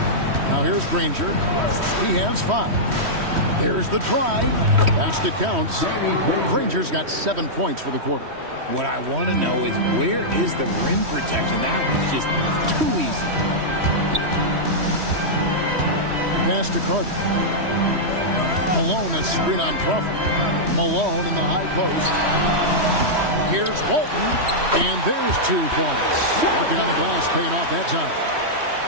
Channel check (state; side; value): late; left; 3.1 ms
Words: Now here's Granger. He has 5. There's the drive. Basket counts. Granger's got 7 points for the quarter. What I want to know is, where is the rim protection? That was just too easy. Pass to Carter. Malone a screen on Crawford. Malone in the high post. Here's Walton. And there's 2 points. Working on the glass, paying off that time.